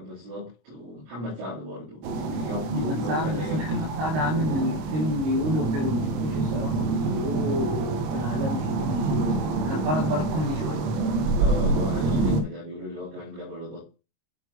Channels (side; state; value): left; late; 26 ms